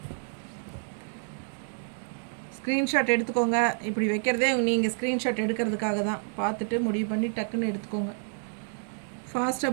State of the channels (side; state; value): left; silent; digital silence